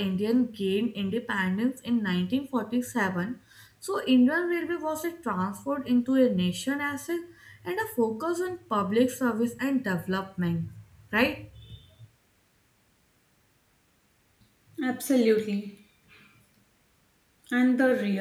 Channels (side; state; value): both; identical; correlation 1.00